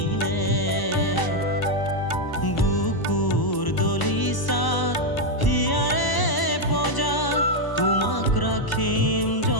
বুকুৰ দলিচা হিয়াৰে পজা তোমাক ৰাখিম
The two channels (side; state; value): right; late; 1.0 ms